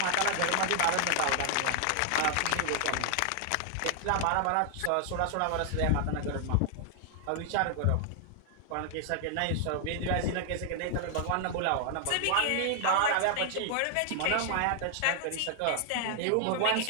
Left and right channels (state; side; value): different; both; correlation 0.00